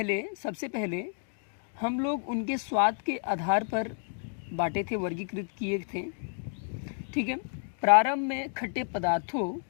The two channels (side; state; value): right; silent; 58 dB below the other